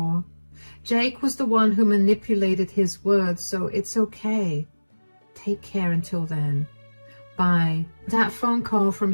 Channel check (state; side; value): inverted; both; correlation -1.00